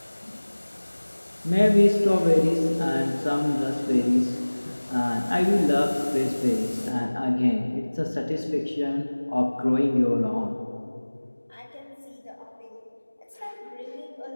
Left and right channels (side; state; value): both; inverted; correlation -1.00